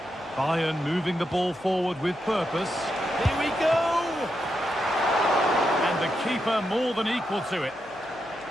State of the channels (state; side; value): noise; left; hum, 28 dB below the sound